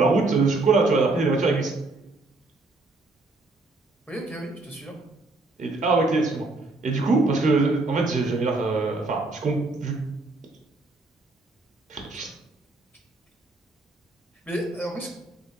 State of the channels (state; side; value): quieter; left; 3.2 dB